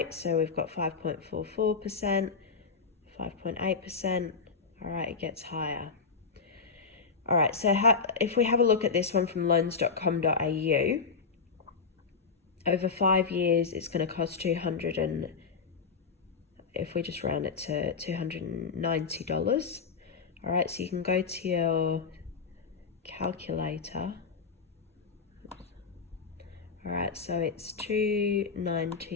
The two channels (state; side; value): quieter; right; 5.3 dB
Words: So we've got 5.44%, 5.8%. All right, it gets higher. All right, so if we have a look at this one from loans.com.au, over 5 years, it's going to cost if we just round it to $290. All right, so you can go to your calculator. All right, so it's